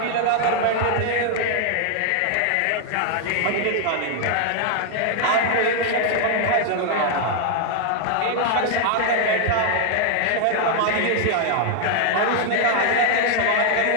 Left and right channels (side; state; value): both; different; correlation 0.00